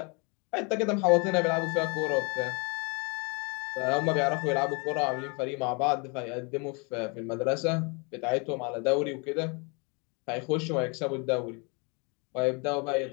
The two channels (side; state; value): right; quieter; 31.9 dB